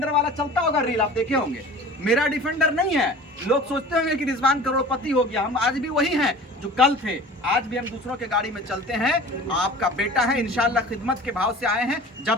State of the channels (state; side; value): normal; both; correlation 0.41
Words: वाला चलता होगा रील, आप देखे होंगे। मेरा डिफेंडर नहीं है। लोग सोचते होंगे कि रिजवान करोड़पति हो गया। हम आज भी वही हैं जो कल थे। आज भी हम दूसरों के गाड़ी में चलते हैं। आपका बेटा है, इंशाल्लाह खिदमत के भाव से आए हैं।